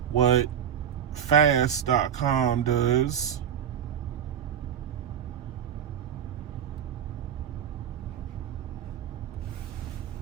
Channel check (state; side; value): quieter; left; 9.1 dB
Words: what fast.com does.